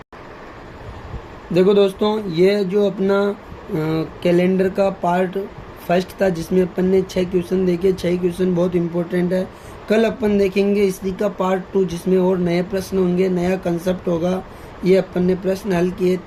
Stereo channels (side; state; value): both; identical; correlation 1.00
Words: देखो दोस्तों, ये जो अपना कैलेंडर का पार्ट फर्स्ट था जिसमें अपन ने 6 क्वेश्चन देखे। 6 क्वेश्चन बहुत इंपॉर्टेंट है। कल अपन देखेंगे इसी का पार्ट 2 जिसमें और नए प्रश्न होंगे, नया कंसेप्ट होगा। ये अपन ने प्रश्न हल किए